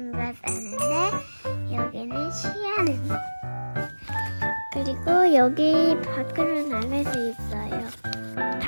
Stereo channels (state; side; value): inverted; both; correlation -1.00